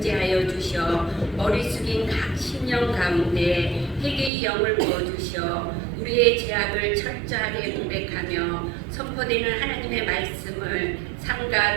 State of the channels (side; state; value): left; drops out; at 4.3 s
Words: 주셔 머리 숙인 각 심령 가운데 회개의 영을 부어주셔 우리의 죄악을 철저하게 고백하며 선포되는 하나님의 말씀을 삼가